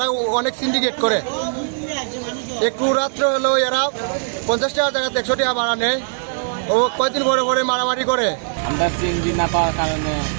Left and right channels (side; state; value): left; silent; 59 dB below the other